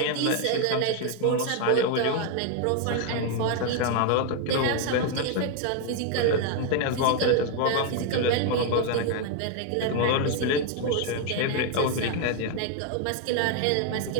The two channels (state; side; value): different; both; correlation 0.01